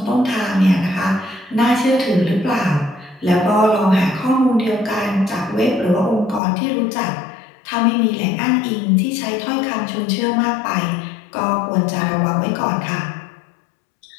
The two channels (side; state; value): right; drops out; at 6.4 s